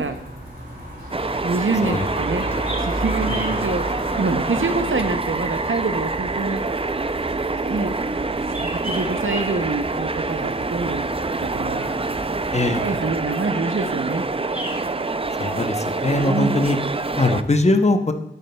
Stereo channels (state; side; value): normal; both; correlation 0.48